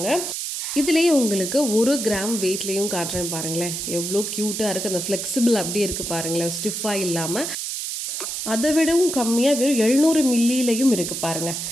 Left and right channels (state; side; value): noise; right; hiss, 4 dB below the sound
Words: இதுலேயே உங்களுக்கு 1 கிராம் வெயிட்லேயும் காட்டுறேன் பாருங்களேன். எவ்வளோ க்யூட்டாக இருக்குது. அந்த ஃப்ளெக்சிபிள் அப்படியே இருக்குது பாருங்களேன், ஸ்டிஃபாக இல்லாமல். அதை விடவும் கம்மியாக வெறும் 700 மில்லிலையும் இருக்குது பாருங்கள்.